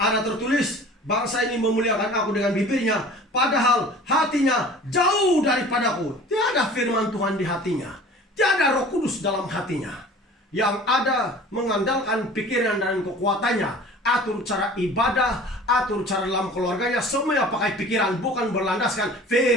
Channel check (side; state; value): both; normal; correlation 0.44